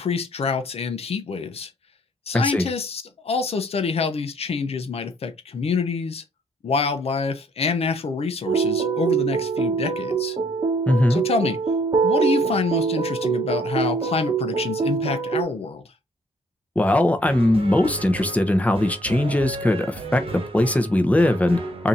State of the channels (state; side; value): normal; both; correlation 0.67